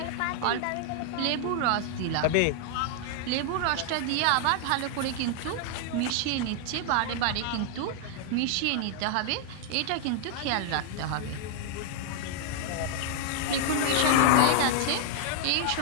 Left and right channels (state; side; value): different; both; correlation 0.00